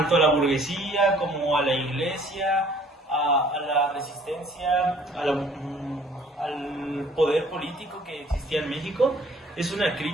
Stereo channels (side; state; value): both; normal; correlation 0.57